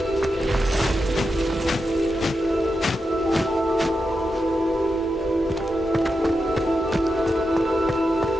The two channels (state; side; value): normal; both; correlation 0.88